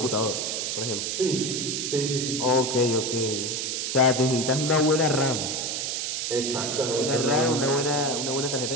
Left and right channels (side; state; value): right; noise; hiss, 2 dB below the sound